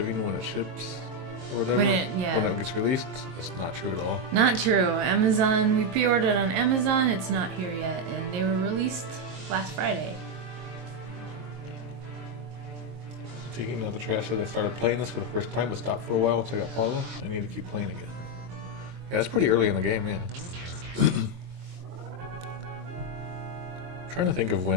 when it ships or whatever, when it gets released, that's not true at all. Not true. Amazon, we pre-ordered on Amazon. It's not here yet, and they were released last Friday. Taking out the trash as I started playing this for the first time, but stopped for a while once I got Paula. I need to keep playing again. Yeah, it's pretty early in the game, yeah. Trying to think of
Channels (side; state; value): left; late; 22 ms